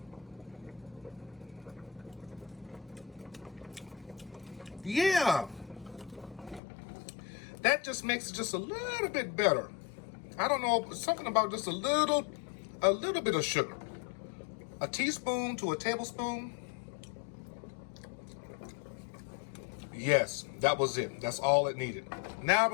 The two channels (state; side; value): drops out; right; at 6.6 s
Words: yeah, that just makes it just a little bit better. I don't know, something about just a little bit of sugar. A teaspoon to a tablespoon. Yes, that was it. That's all it needed. Now